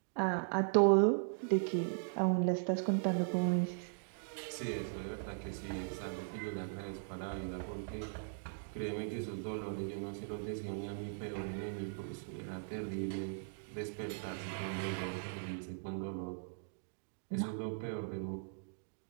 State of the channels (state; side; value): silent; left; digital silence